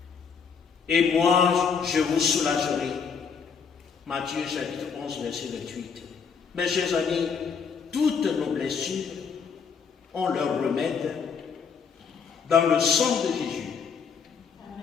et moi je vous soulagerai. Matthieu chapitre 11, verset 28. Mes chers amis, toutes nos blessures ont leur remède dans le sang de Jésus.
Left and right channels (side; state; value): right; quieter; 6.2 dB